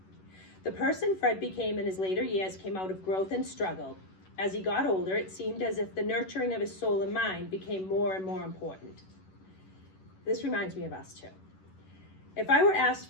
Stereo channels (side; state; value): right; late; 11 ms